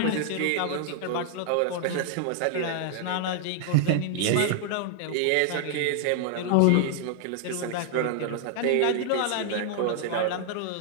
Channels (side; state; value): both; different; correlation 0.00